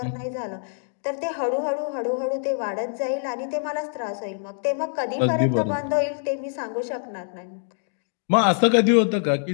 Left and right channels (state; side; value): silent; right; digital silence